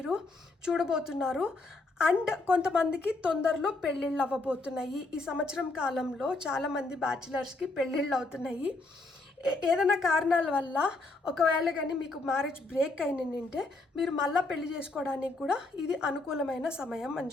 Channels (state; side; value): quieter; right; 3.2 dB